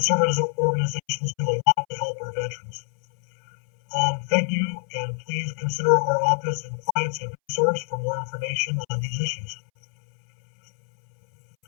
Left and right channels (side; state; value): right; silent; 62 dB below the other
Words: organizations do a lot to help our veterans. Thank you, and please consider our office and clients a resource for more information on these issues.